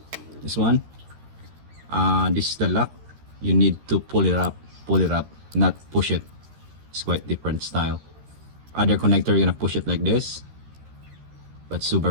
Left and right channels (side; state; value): left; late; 13 ms